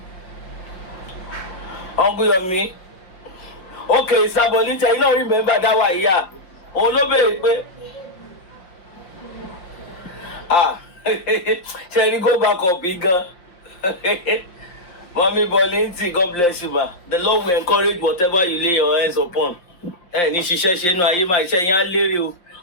Uncle Yomi. Okay, Sabolita, you don't remember that one, yeah. Olobe, shall you go back up, bigger? Mommy Bolinti, God bless you, ma. The Lord will encourage whatever you lay your hands upon. Ni ṣiṣẹ́ nu ayé máa iṣẹ́ yẹn á lérè o.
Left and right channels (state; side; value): late; right; 5.7 ms